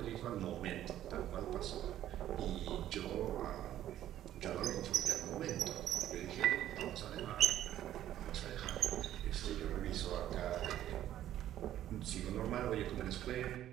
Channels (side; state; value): left; quieter; 12.3 dB